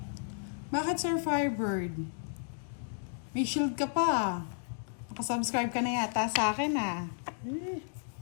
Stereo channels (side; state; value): right; silent; digital silence